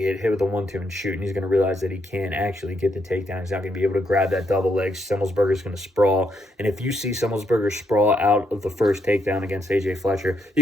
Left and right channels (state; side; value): normal; both; correlation 0.77